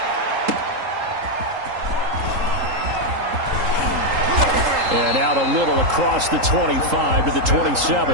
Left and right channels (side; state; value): left; late; 3.8 ms